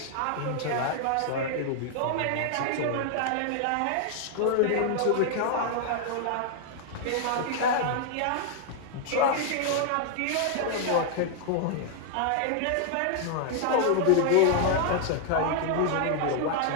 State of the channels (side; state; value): both; different; correlation 0.00